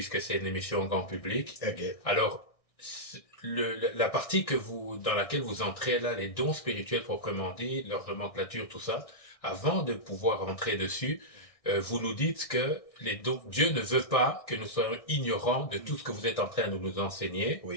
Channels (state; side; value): late; right; 1.6 ms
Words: c'est une émission en grand public. Okay. Alors, la partie dans laquelle vous entrez là, les dons spirituels proprement dit, leur nomenclature, tout ça, avant de pouvoir entrer dessus, vous nous dites que les dons, Dieu ne veut pas que nous soyons ignorants de tout ce que vous êtes en train de nous enseigner,